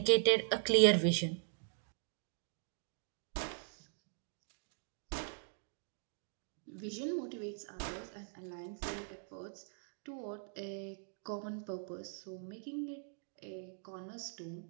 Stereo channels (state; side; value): silent; left; digital silence